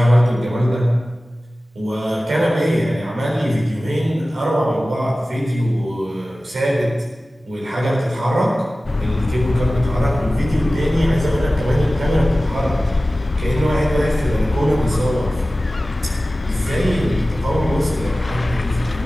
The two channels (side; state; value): both; normal; correlation 0.96